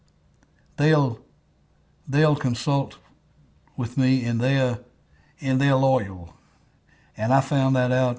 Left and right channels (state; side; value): identical; both; correlation 1.00